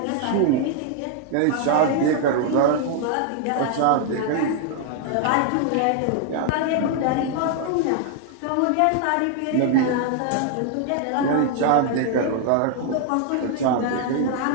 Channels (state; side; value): different; both; correlation 0.00